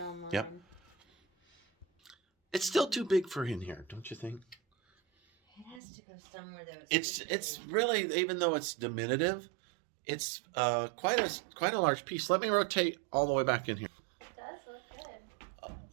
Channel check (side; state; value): left; drops out; at 5.8 s